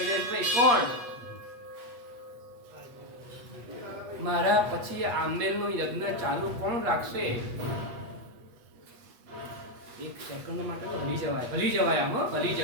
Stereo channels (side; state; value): left; late; 8.3 ms